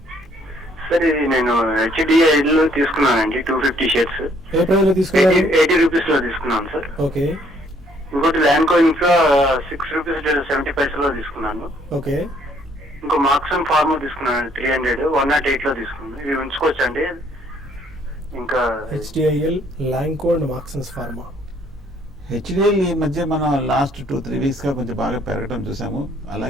సార్ ఇది నేను HDI లో తీసుకున్నానండి 250 షేర్స్. ఏ ప్రైస్ లో తీసుకున్నారు? 80 రూపీస్ లో తీసుకున్నాను సార్. ఓకే. ఇంకోటి ల్యాండ్ కోయిన్స్ 6 రూపీస్ 70 పైసలో తీసుకున్నాను. ఓకే. ఇంకో మార్క్సన్ ఫార్మా తీసుకున్నాను 300 108 లో తీసుకున్నాను. ఇవి ఉంచుకోవచ్చండి? ఇంకా HDIL, Lanco and Marksans pharma. HDL ఈ మధ్య మనం లాస్ట్ 2-3 వీక్స్ గా కొంచెం బాగా పెరగడం చూసాము.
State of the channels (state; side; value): normal; both; correlation 0.65